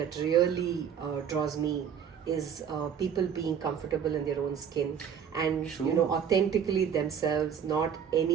really draws me is people being comfortable in their own skin and True. authentically themselves, not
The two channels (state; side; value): quieter; left; 7.9 dB